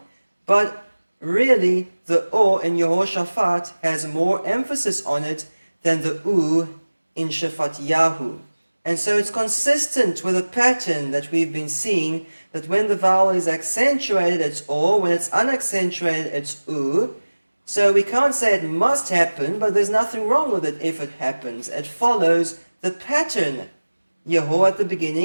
But really, the O in Yehoshaphat has more emphasis on it than the U in Shafat Yahu. And so it's consistent with a pattern that we've been seeing, that when the vowel is accentuated, it's O, when it's unaccentuated, it's U. So we can't say it must happen, but there's nothing wrong with it if it happens. It follows the pattern. Yeho at the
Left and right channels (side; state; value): both; inverted; correlation -1.00